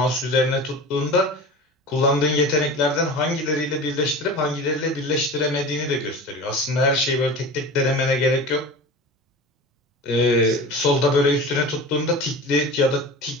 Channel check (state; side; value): normal; both; correlation 0.34